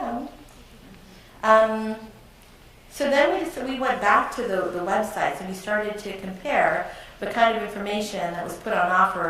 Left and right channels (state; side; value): identical; both; correlation 1.00